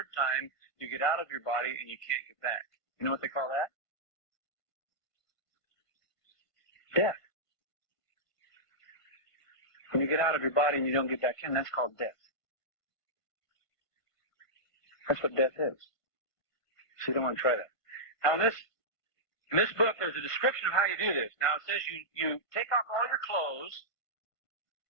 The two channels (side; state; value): right; late; 1.5 ms